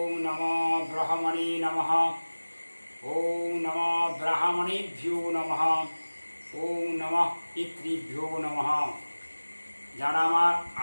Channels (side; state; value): both; inverted; correlation -1.00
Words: नमो ब्रह्मणे नमः। ओम नमो ब्राह्मणेभ्यो नमः। ओम नमः पितृभ्यो नमः। যারা আমার